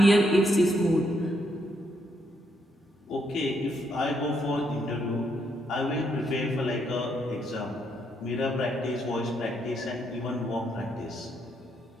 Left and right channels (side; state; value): both; normal; correlation 0.76